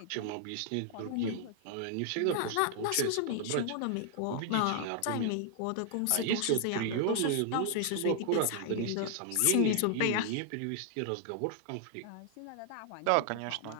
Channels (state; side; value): different; both; correlation 0.00